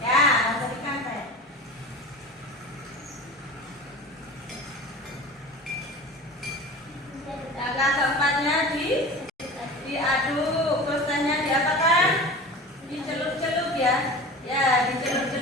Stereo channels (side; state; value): both; normal; correlation 0.36